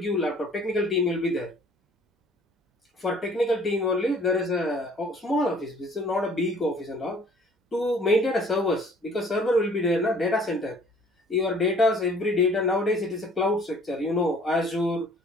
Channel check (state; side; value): normal; both; correlation 0.55